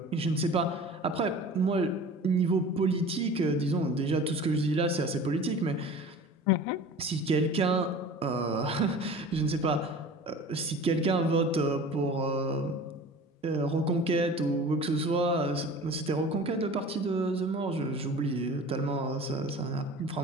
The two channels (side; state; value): both; normal; correlation 0.40